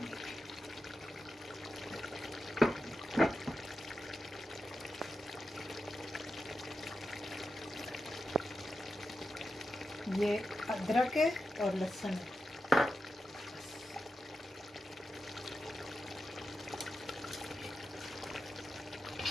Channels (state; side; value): normal; both; correlation 0.90